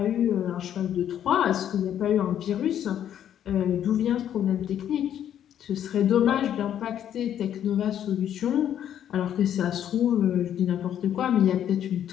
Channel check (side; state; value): right; quieter; 10.2 dB